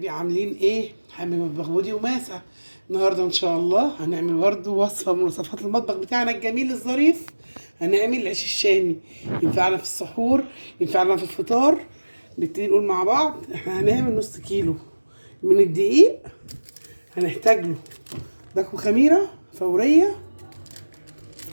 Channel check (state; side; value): inverted; both; correlation -1.00